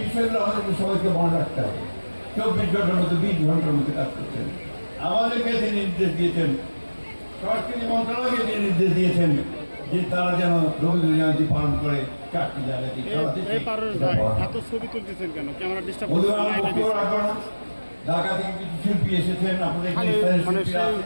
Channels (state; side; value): inverted; both; correlation -1.00